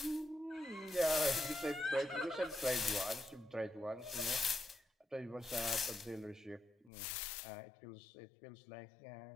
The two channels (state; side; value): drops out; right; at 6.9 s